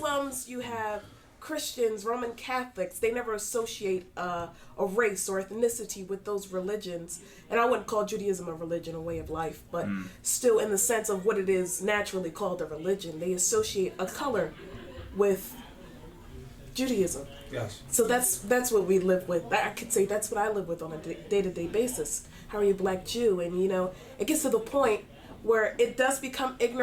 you have Christians, Roman Catholics. They never associate a race or ethnicity with those religions. And I wouldn't call Judaism a religion, a way of life, but still in the sense of what it is naturally called a religion. They associate a color with Judaism. Yes. So that's what we live with. I could say that's what I live with on a day-to-day basis. How are you a black Jew? And you know, it gets to the point where it does become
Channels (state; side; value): identical; both; correlation 1.00